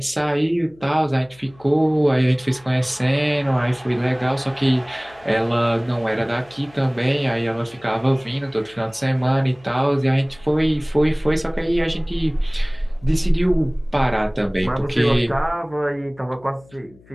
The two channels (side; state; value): left; noise; hum, 27 dB below the sound